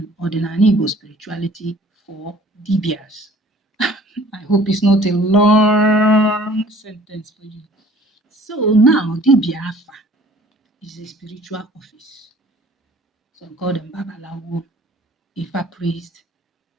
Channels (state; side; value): normal; both; correlation 0.52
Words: ordinary Igbo spirituality for Dibias. I hope it's not a long sentence for you. So now, Dibịa Afa is a spiritual office. Some call them Babalawo, Ifa priest.